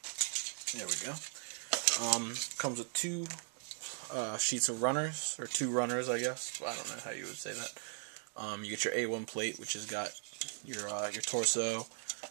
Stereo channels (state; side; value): silent; left; 52 dB below the other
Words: There we go. Comes with 2 sheets of runners, or 2 runners, I guess. I don't know how you would say that. You get your A1 plate, which has got your torso,